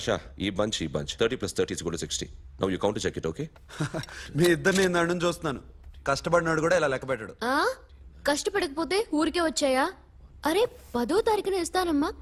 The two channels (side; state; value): both; identical; correlation 1.00